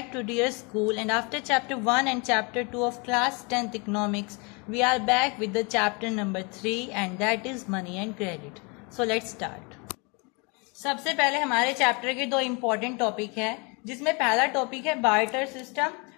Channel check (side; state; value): right; quieter; 31.0 dB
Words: to Dear School, and after chapter 1 and chapter 2 of class 10th economics, we are back with the chapter number 3 and that is money and credit. So let's start. सबसे पहले हमारे chapter के दो important topic है, जिसमें पहला topic है barter system